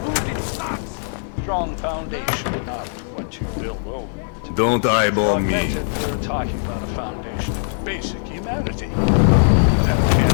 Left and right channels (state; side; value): silent; right; digital silence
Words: Strong foundation, not what you build over. Don't eyeball me. We're talking about a foundation of basic humanity. That